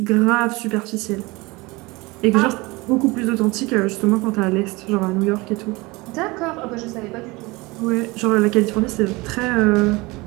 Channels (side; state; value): left; quieter; 23.4 dB